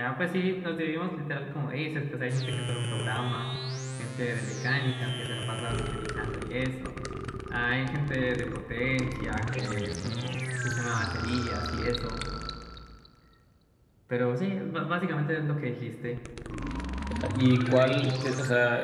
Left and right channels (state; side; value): identical; both; correlation 1.00